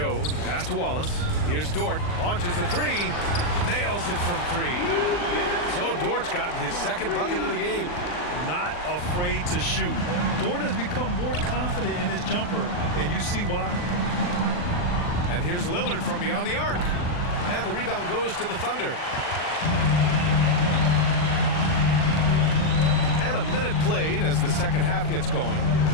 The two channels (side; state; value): right; late; 39 ms